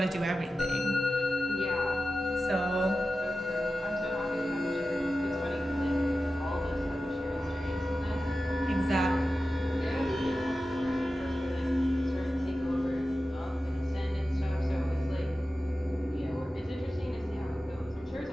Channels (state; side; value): normal; both; correlation 0.93